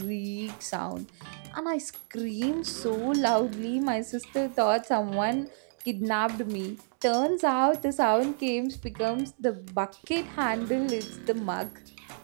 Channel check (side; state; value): left; silent; digital silence